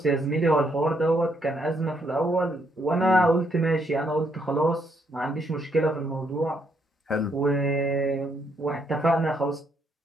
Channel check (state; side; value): normal; both; correlation 0.73